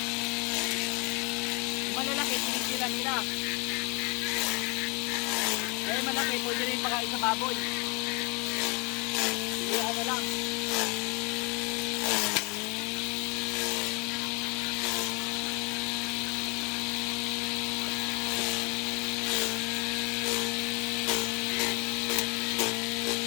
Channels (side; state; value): right; quieter; 31.5 dB